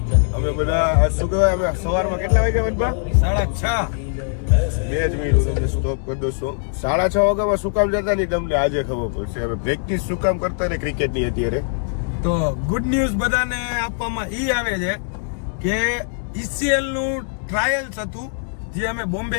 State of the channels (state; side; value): silent; right; digital silence